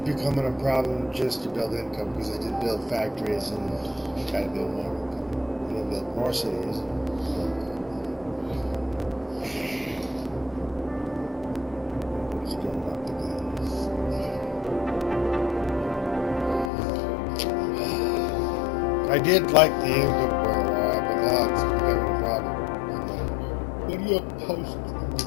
a problem just to build income because I did build factories and gotta build more income. I didn't build more cities. Still not the good. I did like the income for a while, but now it's becoming a problem. What do you post?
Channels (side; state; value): right; drops out; at 16.7 s